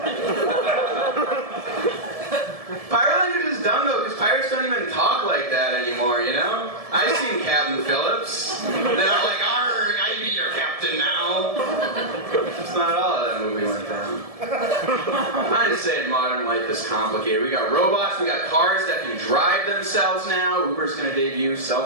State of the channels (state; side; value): late; left; 1.7 ms